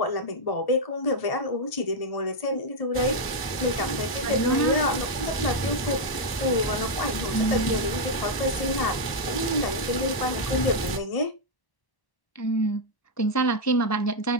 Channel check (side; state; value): right; late; 1.0 ms